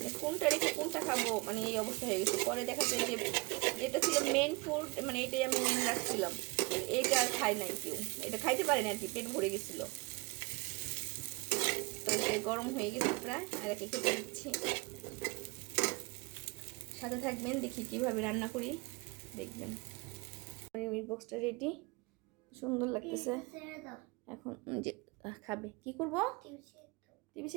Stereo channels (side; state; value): left; quieter; 26.4 dB